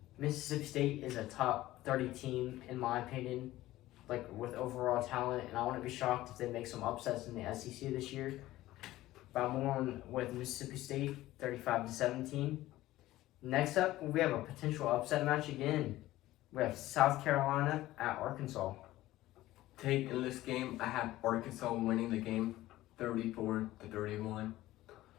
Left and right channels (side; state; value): right; quieter; 16.1 dB